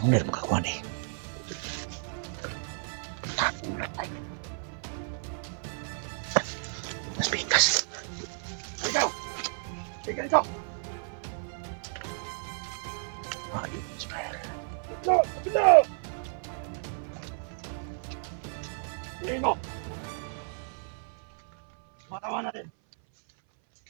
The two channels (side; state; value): left; silent; 57 dB below the other